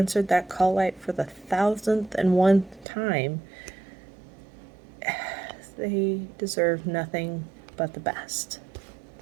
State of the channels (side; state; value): left; drops out; at 2.9 s